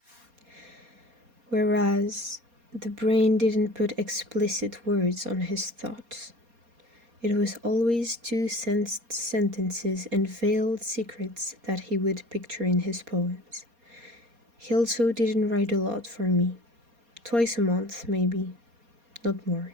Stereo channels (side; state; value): left; late; 4.2 ms